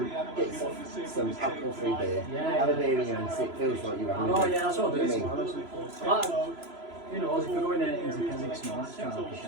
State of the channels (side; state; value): left; late; 3.0 ms